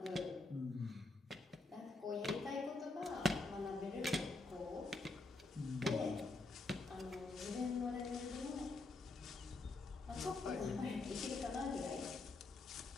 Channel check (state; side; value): quieter; right; 3.3 dB